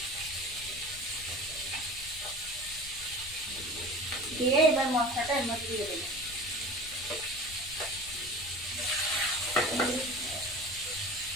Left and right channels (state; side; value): noise; left; rumble, 17 dB below the sound